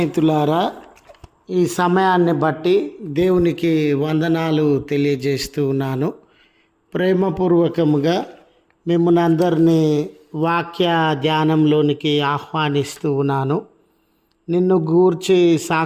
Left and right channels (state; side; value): identical; both; correlation 1.00